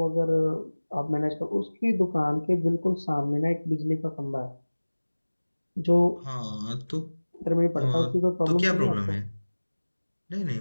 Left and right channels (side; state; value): both; inverted; correlation -1.00